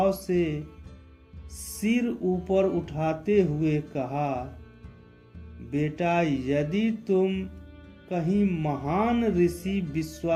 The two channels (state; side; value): identical; both; correlation 1.00